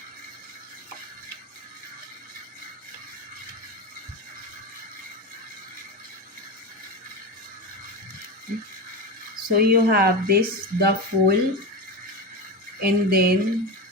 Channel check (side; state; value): both; normal; correlation 0.21